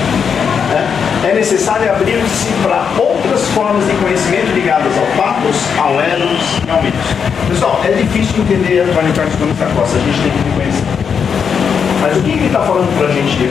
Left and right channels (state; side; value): quieter; right; 6.7 dB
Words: é necessário abrir-se para outras formas de conhecimento ligadas ao patos, ao eros e ao mitos. Pessoal, é difícil entender Antônio Carlos Gomes da Costa, a gente tem que reconhecer. Mas o que ele está falando para a gente